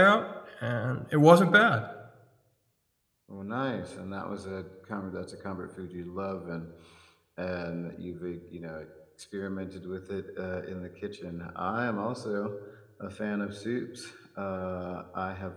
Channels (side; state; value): both; identical; correlation 1.00